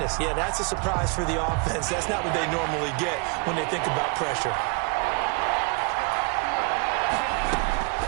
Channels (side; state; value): left; quieter; 30.7 dB